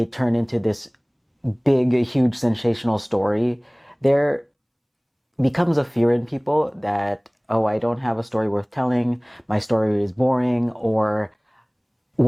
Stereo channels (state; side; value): identical; both; correlation 1.00